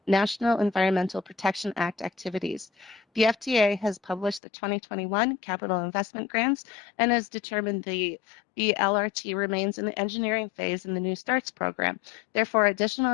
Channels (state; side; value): drops out; right; at 4.4 s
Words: National Environmental Protection Act activities. The FTA has published the 2021 capital investment grants and has determined the LRT remains in the engineering phase in the New Starts program. Therefore,